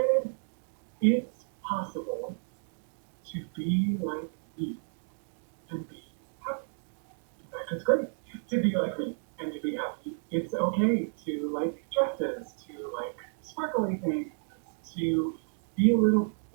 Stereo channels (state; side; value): silent; left; digital silence